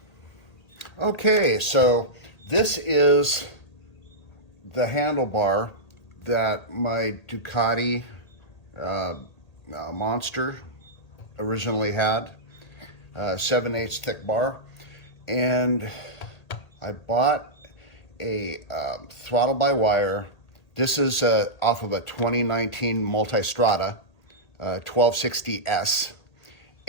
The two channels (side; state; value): right; late; 1.8 ms